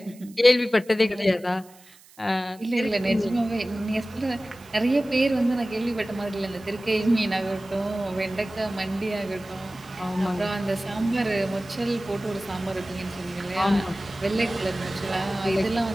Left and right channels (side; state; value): right; noise; hiss, 25 dB below the sound